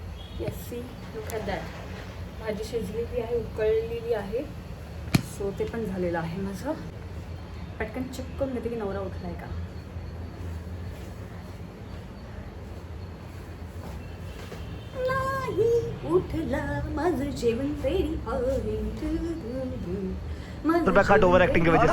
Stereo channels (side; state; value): both; identical; correlation 1.00